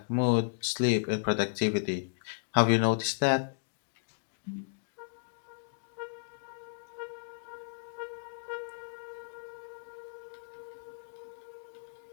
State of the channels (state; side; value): silent; right; digital silence